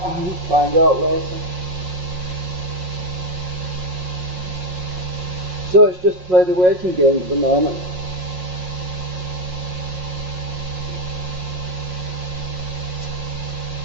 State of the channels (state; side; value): late; left; 5.5 ms